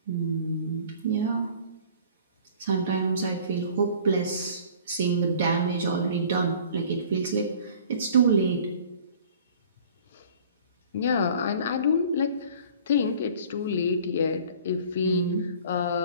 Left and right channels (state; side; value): inverted; both; correlation -0.48